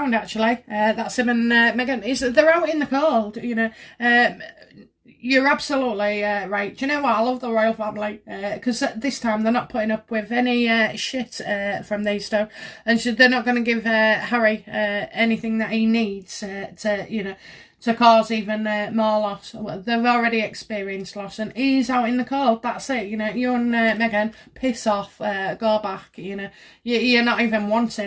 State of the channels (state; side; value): identical; both; correlation 1.00